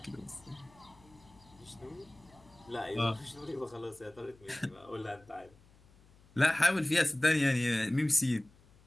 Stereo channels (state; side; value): noise; left; hum, 27 dB below the sound